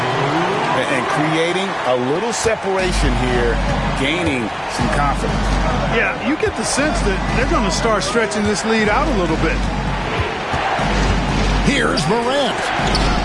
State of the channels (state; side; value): identical; both; correlation 1.00